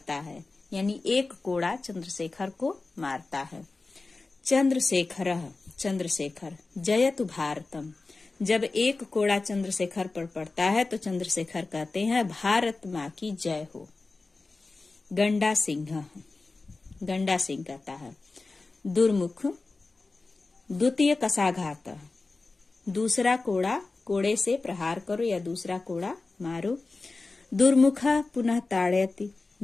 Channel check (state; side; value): quieter; right; 3.6 dB